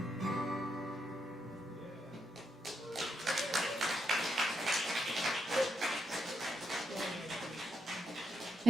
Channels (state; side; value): normal; both; correlation 0.81